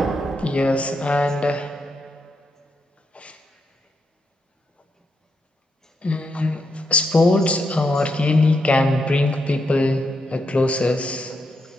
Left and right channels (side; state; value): both; normal; correlation 0.81